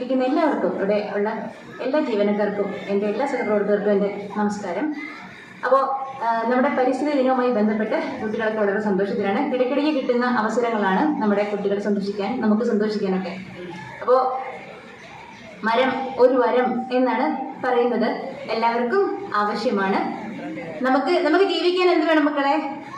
എല്ലാവർക്കും ഇവിടെ ഉള്ള എല്ലാ ജീവനക്കാർക്കും എൻ്റെ എല്ലാ സഹപ്രവർത്തകർക്കും എൻ്റെ നമസ്കാരം. അപ്പോൾ നമ്മുടെ പരിസ്ഥിതി ദിനവുമായി ബന്ധപ്പെട്ട് കുട്ടികളൊക്കെ വളരെ സന്തോഷത്തിലാണ്. ഇടയ്ക്കിടയ്ക്ക് കിട്ടുന്ന അവസരങ്ങളാണ് നമ്മുടെ കുട്ടികളെ സന്തോഷിക്കാൻ, നമുക്ക് സന്തോഷിക്കാനൊക്കെ. അപ്പോൾ മരം ഒരു വരം എന്നാണ് പറയുന്നത്. എല്ലാവർക്കും ആവശ്യമാണ്. നമുക്ക് ജീവിക്കാൻ എന്ത് വേണം മക്കളെ?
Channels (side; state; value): both; identical; correlation 1.00